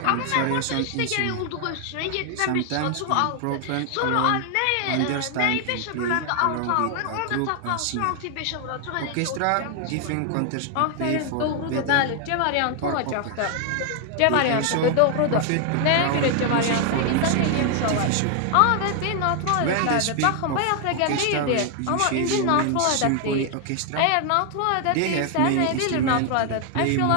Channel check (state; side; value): different; both; correlation 0.00